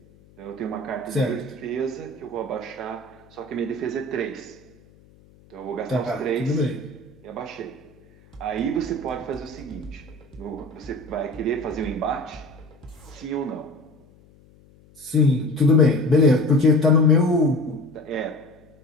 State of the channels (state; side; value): noise; left; hum, 27 dB below the sound